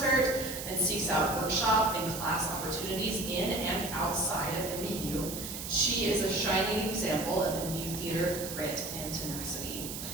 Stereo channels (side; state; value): right; noise; hiss, 7 dB below the sound